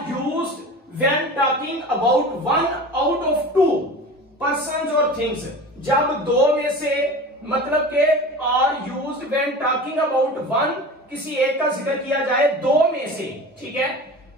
used when talking about one out of two persons और थिंग्स। जब दो में से, मतलब के are used when talking about one, किसी एक का जिक्र किया जाए दो में से, ठीक है।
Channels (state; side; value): normal; both; correlation 0.35